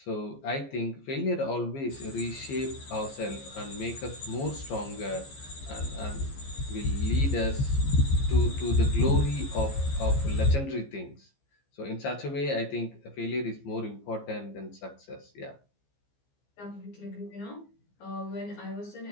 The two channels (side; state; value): right; late; 15 ms